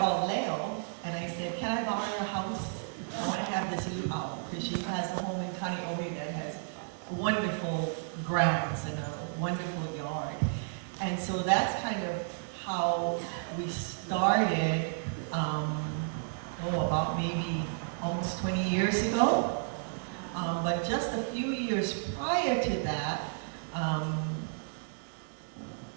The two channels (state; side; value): silent; left; 56 dB below the other